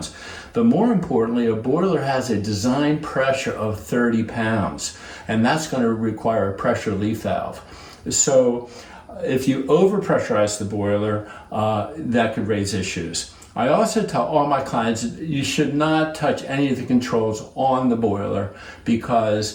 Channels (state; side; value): identical; both; correlation 1.00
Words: But more importantly, a boiler has a design pressure of 30 pounds, and that's going to require a pressure relief valve. So if you overpressurize the boiler, that could raise issues. I also tell all my clients you should not touch any of the controls on the boiler,